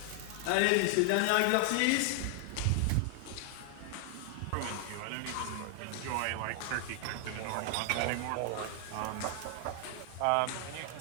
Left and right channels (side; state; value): both; different; correlation 0.00